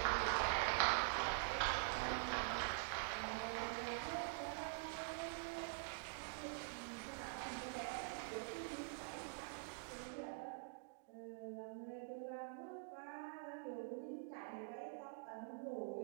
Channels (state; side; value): silent; left; digital silence